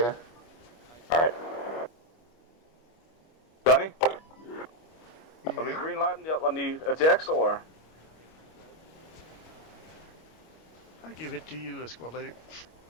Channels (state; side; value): late; right; 25 ms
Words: Alright. Johnny? Are we green lighting up on the FTX or? I give it to you, squad leader.